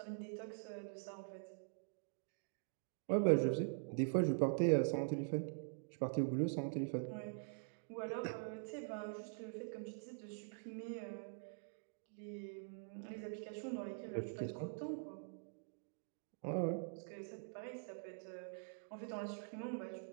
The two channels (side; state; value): left; silent; digital silence